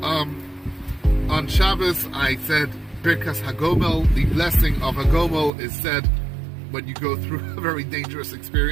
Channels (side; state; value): left; drops out; at 5.5 s